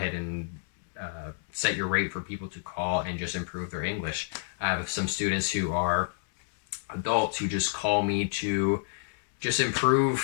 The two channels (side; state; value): right; silent; digital silence